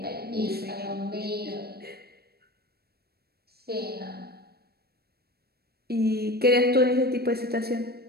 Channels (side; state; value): left; late; 0.46 ms